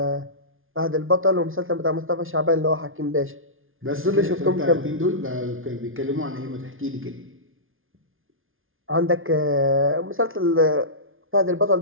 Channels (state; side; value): late; left; 0.59 ms